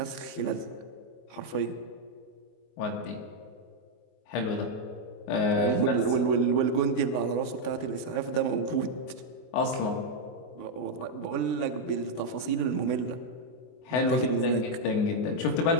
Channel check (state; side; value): late; right; 24 ms